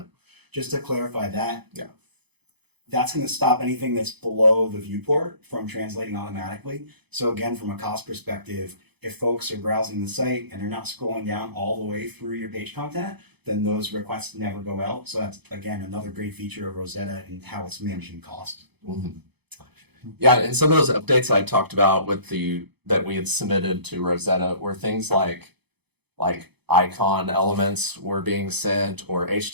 Just to clarify that. Yeah. That's going to stop anything that's below the viewport from translating automatically. So again, from a cost perspective, if folks are browsing the site and they're not scrolling down all the way through your page content, then those requests never go out. So that's, again, another great feature of Rosetta and how it's managing cost. Mm-hmm. Yeah, and some of those updates I talked about that we had submitted to Rosetta were things like icon elements were being sent, or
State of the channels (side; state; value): left; late; 0.98 ms